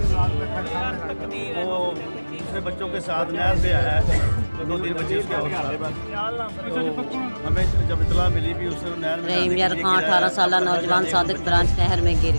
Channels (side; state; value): both; inverted; correlation -1.00